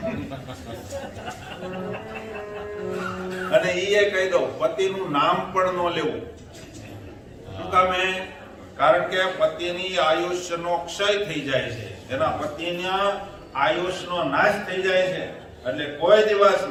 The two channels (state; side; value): identical; both; correlation 1.00